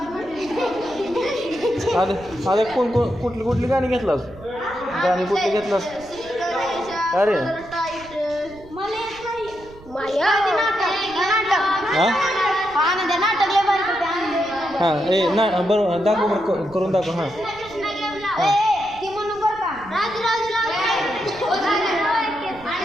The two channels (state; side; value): noise; right; rumble, 20 dB below the sound